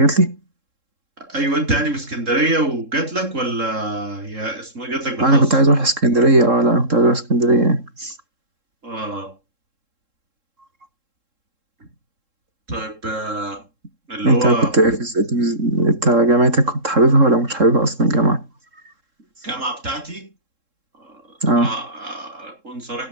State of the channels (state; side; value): late; left; 3.7 ms